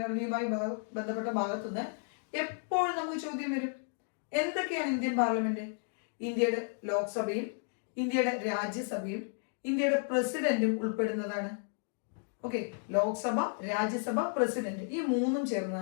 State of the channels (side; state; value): right; silent; 56 dB below the other